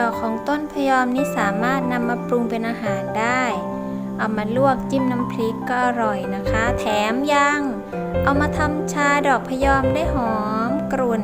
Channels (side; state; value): both; identical; correlation 1.00